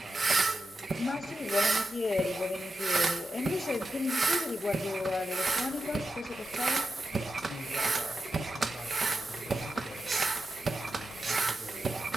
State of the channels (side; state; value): both; normal; correlation 0.90